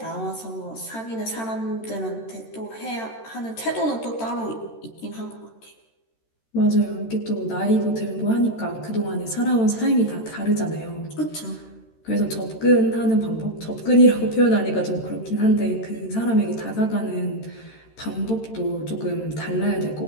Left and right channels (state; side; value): late; right; 13 ms